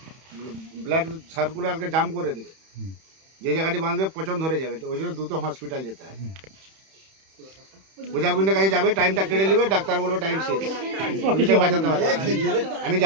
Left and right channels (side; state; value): left; late; 31 ms